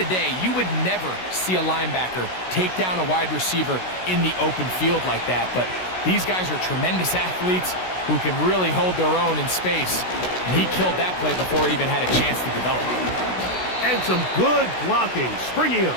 day, you would never see a linebacker take down a wide receiver in the open field like that. But these guys are tremendous athletes who can really hold their own in space. And he killed that play before it even had a chance to develop. And some good blocking, springing him.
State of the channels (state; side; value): late; right; 16 ms